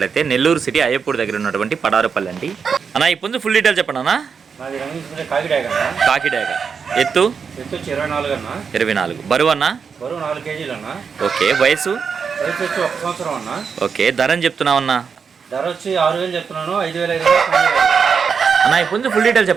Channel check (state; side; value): quieter; left; 6.1 dB